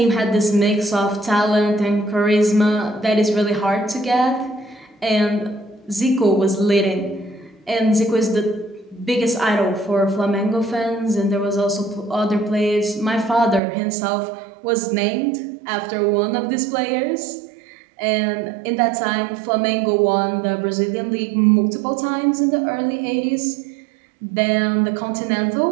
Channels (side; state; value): left; drops out; at 13.6 s